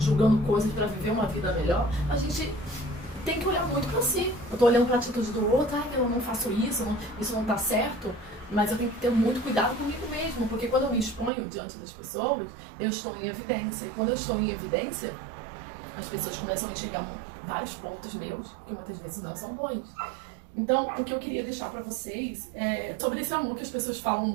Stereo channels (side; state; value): left; drops out; at 11.3 s